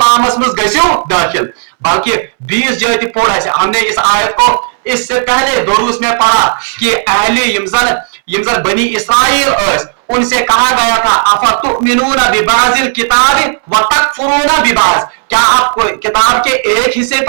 में गसियो दाखिल। बल्कि 20 जगह पढ़ा है हमने इस आयत को, इससे पहले दुरूस में पढ़ा कि अहले यमजन बनी इस्राइल उनसे कहा गया था अफतुमिनूना बिबाज़िल किताबि व तकफुरूना बिबाज़, क्या आप किताब के एक हिस्से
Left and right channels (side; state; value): left; silent; digital silence